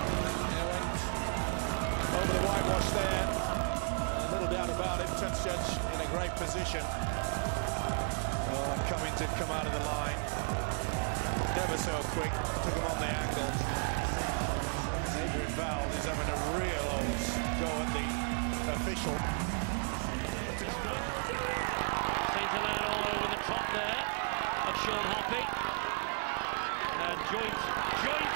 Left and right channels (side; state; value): left; silent; 55 dB below the other